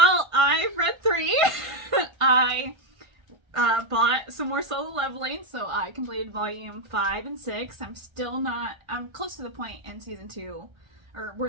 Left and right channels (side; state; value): left; late; 1.5 ms